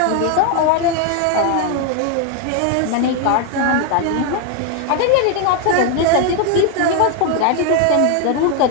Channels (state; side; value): different; both; correlation 0.01